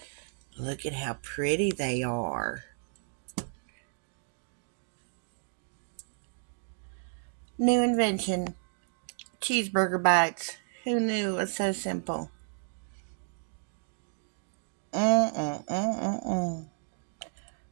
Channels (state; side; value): silent; left; 56 dB below the other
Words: Look at how pretty they are. New invention. Cheeseburger bites. Who knew it was so simple?